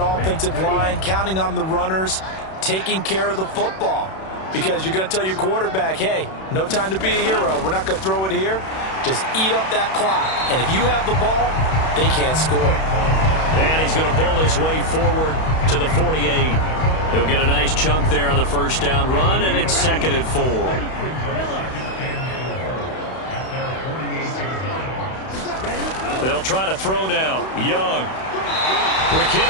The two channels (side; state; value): right; late; 31 ms